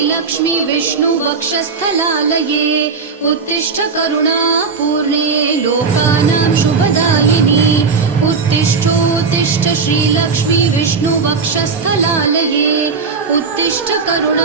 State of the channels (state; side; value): quieter; left; 5.0 dB